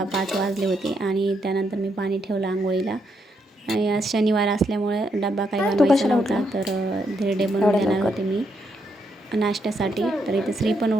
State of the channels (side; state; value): both; normal; correlation 0.78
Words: वाजले होते आणि त्यानंतर मी पाणी ठेवलं आंघोळीला. आणि आज शनिवार असल्यामुळे डब्बा काही बनवायचा नव्हता, तर धिरडे बनवून देणार होते मी नाश्त्यासाठी. तर इथं श्री पण